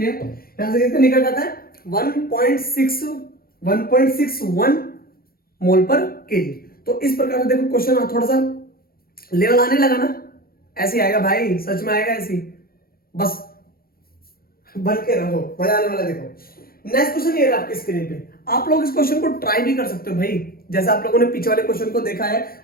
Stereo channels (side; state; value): right; late; 0.43 ms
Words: यहां से कितना निकल जाता है? 1.61 मोल पर केजी। तो इस प्रकार से देखो क्वेश्चन थोड़ा सा लेवल आने लगा ना, ऐसे आएगा भाई, सच में आएगा ऐसे, बस बन के रहो, मजा आने वाला। देखो नेक्स्ट क्वेश्चन ये है आपकी स्क्रीन पे। आप लोग इस क्वेश्चन को ट्राई भी कर सकते हो भाई, जैसा आप लोगों ने पीछे वाले क्वेश्चन को देखा है